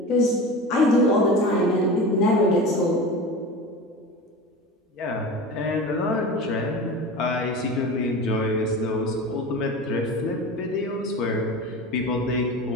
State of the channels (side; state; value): both; normal; correlation 0.31